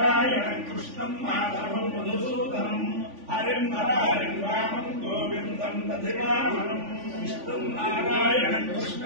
కృష్ణం మాధవం మధుసూదనం హరిం హరిం రామం గోవిందం దశరామం విష్ణు నారాయణ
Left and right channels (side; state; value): left; late; 3.5 ms